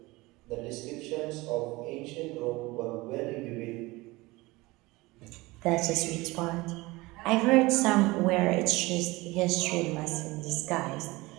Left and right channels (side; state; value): left; quieter; 21.6 dB